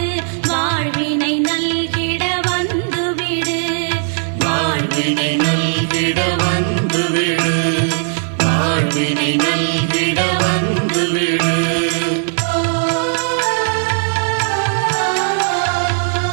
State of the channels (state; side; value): silent; left; 68 dB below the other